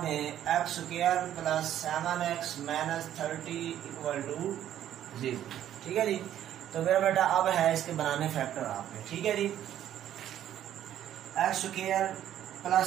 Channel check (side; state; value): left; quieter; 11.3 dB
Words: दें, x square plus 7x minus 30 equal to 0। ठीक है जी, तो मेरा बेटा अब है इसके बनाने फैक्टर आपने। ठीक है जी, x square plus